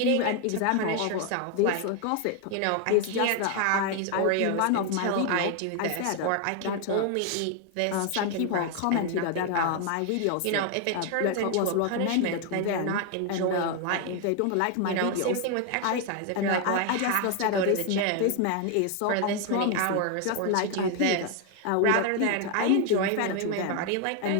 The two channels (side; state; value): both; different; correlation 0.01